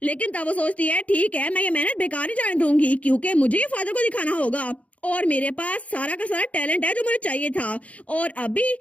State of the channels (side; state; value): right; late; 0.066 ms